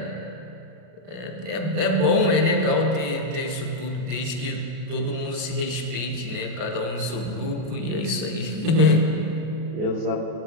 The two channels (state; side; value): late; left; 33 ms